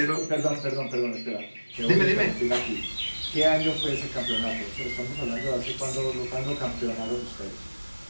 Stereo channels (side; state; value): both; inverted; correlation -1.00